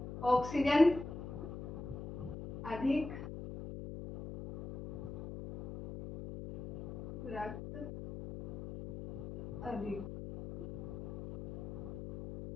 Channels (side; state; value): left; noise; hum, 9 dB below the sound